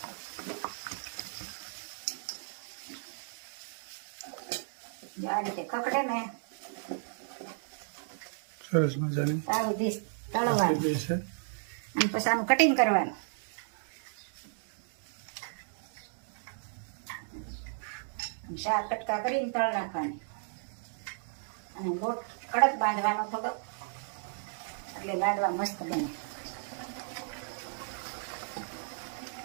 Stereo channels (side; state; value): left; silent; digital silence